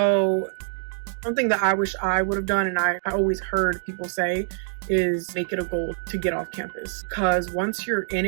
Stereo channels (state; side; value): silent; left; digital silence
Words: something that I wish I would have done, and I always heard people say, is make it a goal to get off campus. Because once you're in